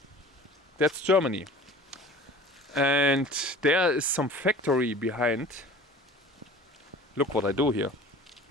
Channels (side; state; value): both; normal; correlation 0.44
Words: that's Germany. And there is some factory behind. Look what I do here.